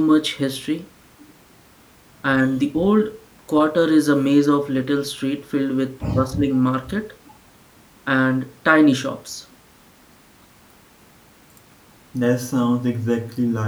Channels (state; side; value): identical; both; correlation 1.00